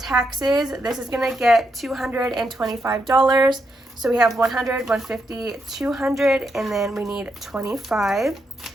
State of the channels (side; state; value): both; normal; correlation 0.81